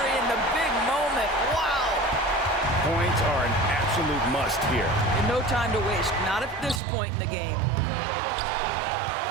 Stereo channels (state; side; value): drops out; left; at 6.8 s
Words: in the big moment. Wow! Points are an absolute must here. And no time to waste. Not at this point in the game.